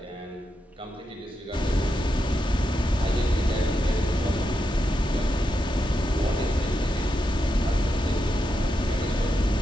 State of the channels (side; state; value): both; normal; correlation 0.86